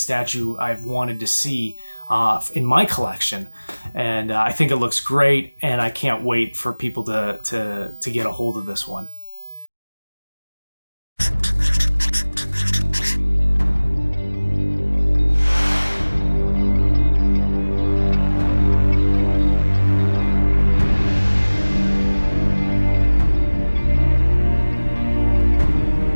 I've wanted to see in my collection. And I think it looks great, and I can't wait for people to get a hold of this one.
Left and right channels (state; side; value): inverted; both; correlation -1.00